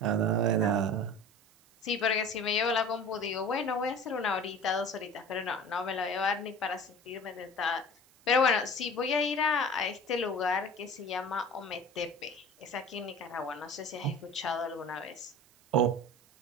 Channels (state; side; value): noise; right; hiss, 29 dB below the sound